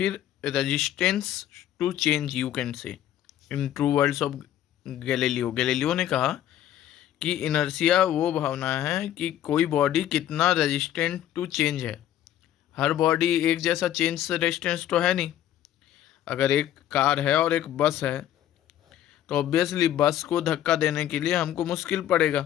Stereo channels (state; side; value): quieter; right; 11.7 dB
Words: resistance to change you can say in true words of Galileo ने कहा कि इनर्शिया वो भावना है कि कोई बॉडी कितना रेजिस्टेंट टू चेंज है। हर बॉडी एक जैसा चेंज से रेजिस्टेंस तो है नहीं। अगर एक कार है और एक बस है तो ऑब्वियसली बस को धक्का देने के लिए हमको मुश्किल पड़ेगा,